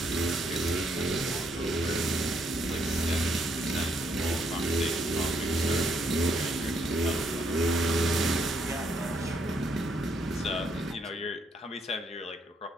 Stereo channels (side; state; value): both; normal; correlation 0.72